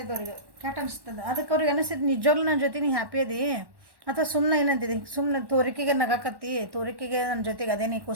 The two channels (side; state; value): left; late; 1.1 ms